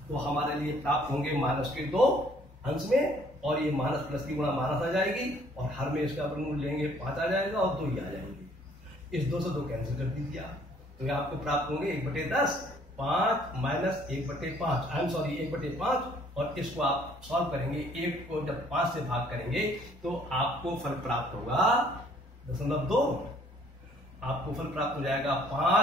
तो हमारे लिए प्राप्त होंगे माइनस के 2 अंश में, और ये माइनस प्लस की गुणा माइनस आ जाएगी और हर में इसका वर्गमूल लेंगे 5 आ जाएगा और 2 ही आ जाएंगे। इस 2 से 2 कैंसिल कर दीजिए आप, तो ये आपको प्राप्त होंगे 1/10 5 माइनस 1/5 आई एम सॉरी 1/5, और इसको आप सॉल्व करेंगे। 1 को जब 5 से भाग करेंगे तो आपको फल प्राप्त होगा 0.2। आपको फल प्राप्त हो जाएगा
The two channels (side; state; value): both; normal; correlation 0.60